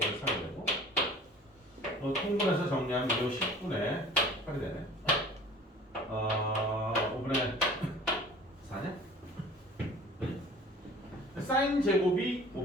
3이 되고, 통분해서 정리하면 이 10분의 8이 되네. 5분의 4냐? 사인 제곱이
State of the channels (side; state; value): both; normal; correlation 0.46